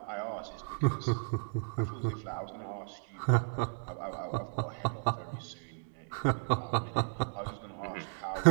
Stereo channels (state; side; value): silent; left; digital silence